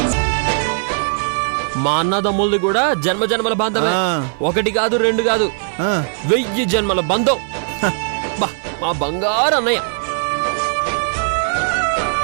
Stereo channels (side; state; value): left; silent; digital silence